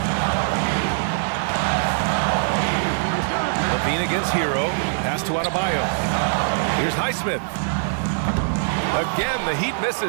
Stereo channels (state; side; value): silent; left; digital silence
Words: Levine against Hero. Pass to Adebayo. Here's Highsmith. Again, the Heat